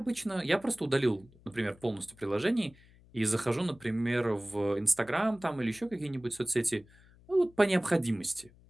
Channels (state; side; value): noise; left; hum, 26 dB below the sound